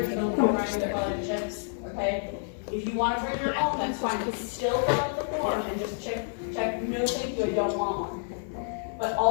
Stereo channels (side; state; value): right; silent; digital silence